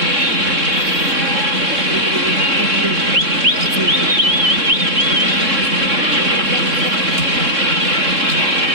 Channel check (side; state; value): left; late; 3.6 ms